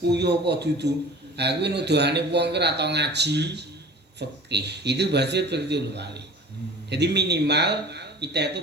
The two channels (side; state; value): both; normal; correlation 0.42